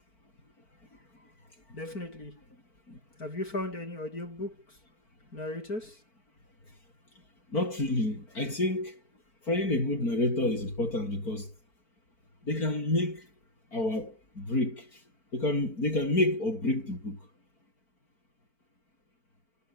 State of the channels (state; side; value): late; right; 4.5 ms